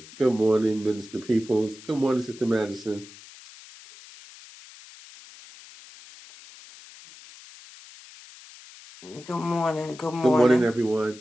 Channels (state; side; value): noise; left; hiss, 20 dB below the sound